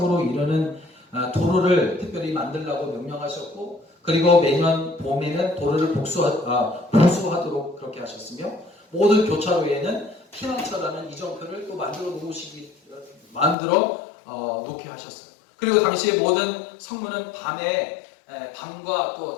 이르는 도로를 특별히 만들라고 명령하셨고 그리고 매년 봄에는 도로를 보수하도록 그렇게 하셨으며 모든 교차로에는 피난처라는 이정표를 또 만들어 놓게 하셨어요. 그리고 당시에 모든 성문은 밤과 또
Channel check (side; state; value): right; drops out; at 13.6 s